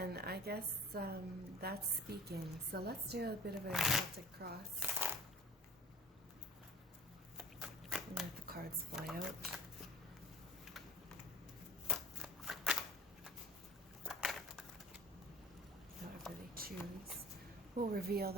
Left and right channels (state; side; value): normal; both; correlation 0.42